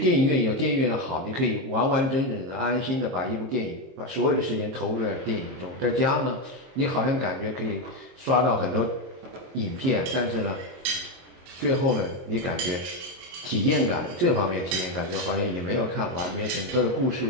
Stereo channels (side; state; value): left; late; 23 ms